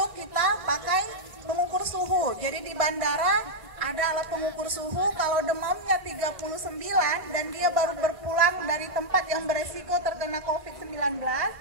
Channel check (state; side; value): late; left; 1.6 ms